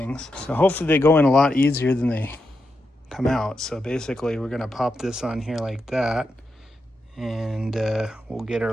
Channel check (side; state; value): both; normal; correlation 0.86